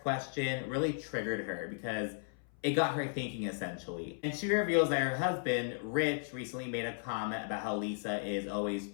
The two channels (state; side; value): silent; right; 54 dB below the other